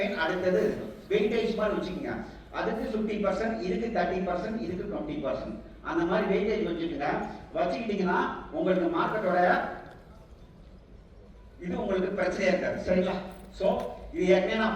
அடுத்தது வெயிட்டேஜ் மாதிரி வச்சுக்கோங்க. அதுக்கு 50%, இதுக்கு 30%, இதுக்கு 20%, அந்த மாதிரி வெயிட்டேஜ் வச்சுக்கோங்க. வச்சுக்கிட்டீங்கன்னா உங்களுக்கு மார்க்கெட்டோட இது உங்களுக்கு பிரச்சனையா இருக்காது. சரிங்களா? சோ இது ஏற்கனவே நான்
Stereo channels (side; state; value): both; identical; correlation 1.00